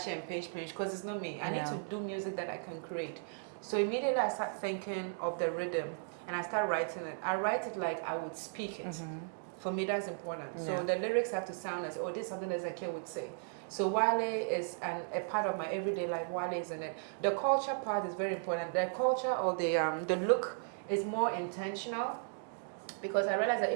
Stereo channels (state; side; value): silent; left; digital silence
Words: and pinch, because it's not me. I need to do music that I can create. So immediately I start thinking of the rhythm and I start writing it. I write it like I would speak it. For me, that's important. Yeah. So the lyrics have to sound as, this is something that Zakia would say. So Wale is a part of my everyday life. Wale is in it. The culture part is very important. The culture or the look is more intentional, because I realize that